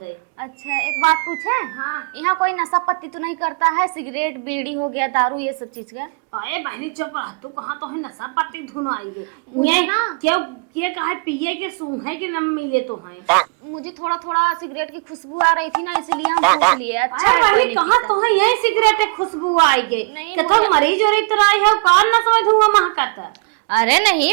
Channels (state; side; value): quieter; left; 35.0 dB